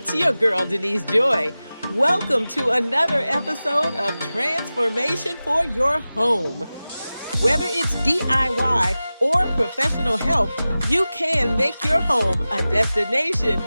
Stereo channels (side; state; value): both; inverted; correlation -0.96